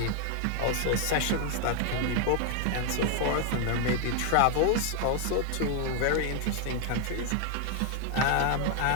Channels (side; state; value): both; different; correlation 0.00